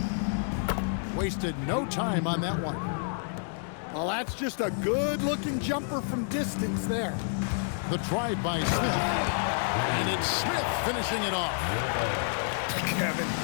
Wasted no time on that one. Well, that's just a good-looking jumper from distance there. The drive by Smith. And it's Smith finishing it off. Kevin,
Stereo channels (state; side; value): silent; right; digital silence